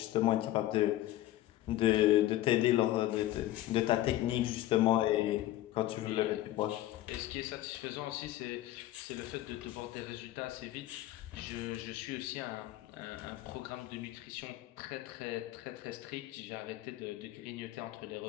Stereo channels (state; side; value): quieter; right; 14.9 dB